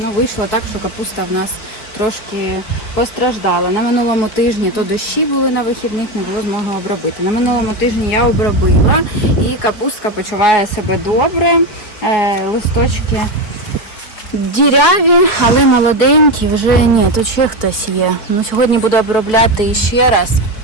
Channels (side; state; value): right; late; 5.3 ms